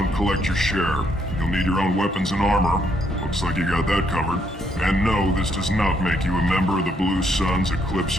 collect your share. You'll need your own weapons and armor. Looks like you got that covered. And no, this does not make you a member of the Blue Suns, Eclipse,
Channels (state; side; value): normal; both; correlation 0.72